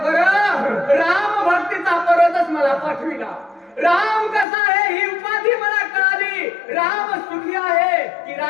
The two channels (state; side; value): drops out; right; at 4.5 s